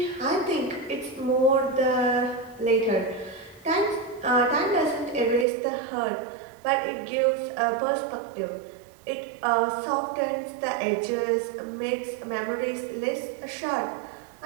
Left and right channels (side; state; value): left; drops out; at 5.5 s